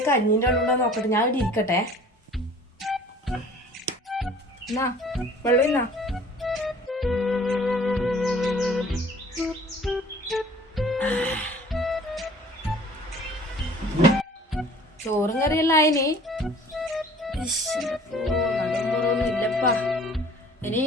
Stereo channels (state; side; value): normal; both; correlation 0.50